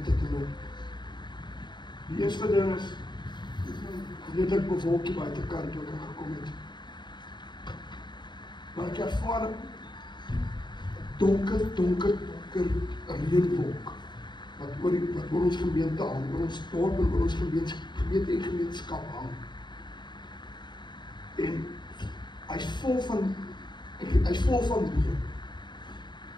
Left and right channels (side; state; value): right; late; 0.22 ms